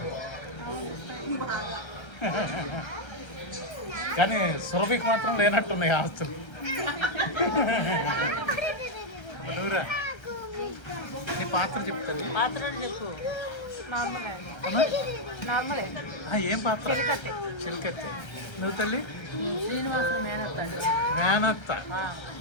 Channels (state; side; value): late; right; 1.3 ms